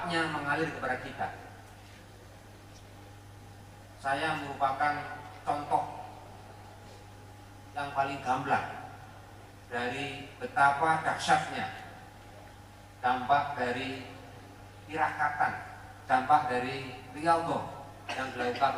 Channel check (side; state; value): both; identical; correlation 1.00